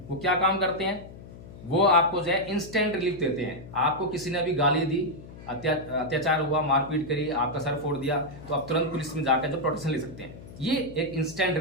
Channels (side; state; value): left; noise; hum, 16 dB below the sound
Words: वो क्या काम करते हैं? वो आपको जो है इंस्टेंट रिलीफ देते हैं। आपको किसी ने भी गाली दी, अत्याचार हुआ, मारपीट करी, आपका सर फोड़ दिया, तो आप तुरंत पुलिस में जाकर जो प्रोटेक्शन ले सकते हैं। ये एक इंस्टेंट